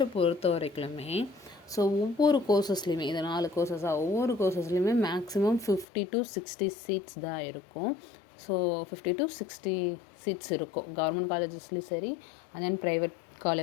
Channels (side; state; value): right; drops out; at 5.9 s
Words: பொறுத்த வரைக்குமே ஒவ்வொரு கோர்சஸ்லேயுமே இது 4 கோர்சஸாக ஒவ்வொரு கோர்சஸ்லேயுமே மேக்ஸிமம் 50 to 60 சீட்ஸ் தான் இருக்கும். ஸோ 50 to 60 சீட்ஸ் இருக்கும் கவர்மெண்ட் காலேஜஸ்லேயும் சரி, அண்ட் தென் ப்ரைவேட்